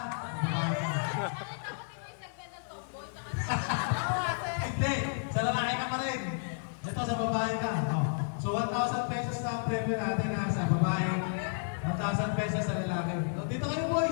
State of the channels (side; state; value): right; silent; digital silence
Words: Babae ka. Hindi, sa lalaki ka pa rin. Ito sa babae ka. Oh. So 1,000 pesos na premyo natin ha, sa babae. 1,000 pesos sa lalaki. So, dito kayo